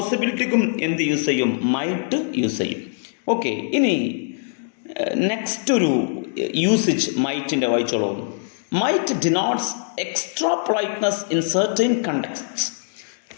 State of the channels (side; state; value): right; silent; digital silence